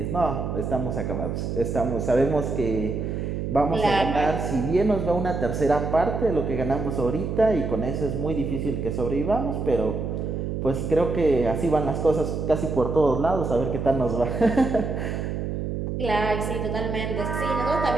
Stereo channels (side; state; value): right; noise; hum, 3 dB below the sound